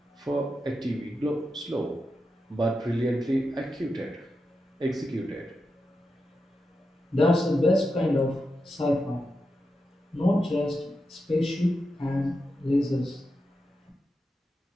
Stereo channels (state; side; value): normal; both; correlation 0.88